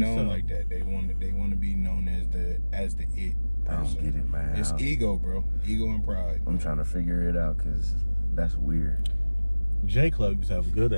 so. like that. They want to be known as the it. I don't get it, man. It's ego, bro. Ego and pride. I'm trying to figure it out because that's weird. J Club used to have a good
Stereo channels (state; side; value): inverted; both; correlation -1.00